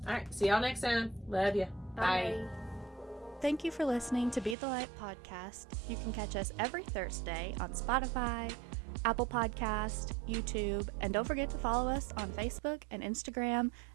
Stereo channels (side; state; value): left; drops out; at 4.5 s